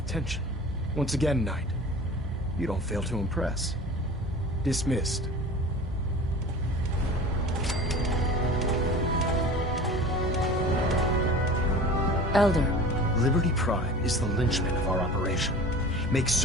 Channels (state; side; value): normal; both; correlation 0.39